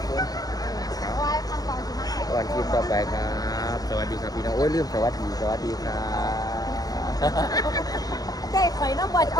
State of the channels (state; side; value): late; right; 0.18 ms